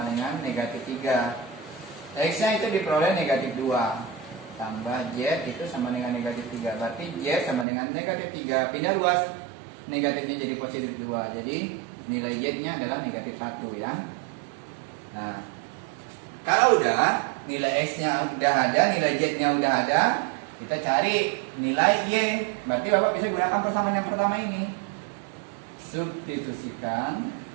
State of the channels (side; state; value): left; drops out; at 7.7 s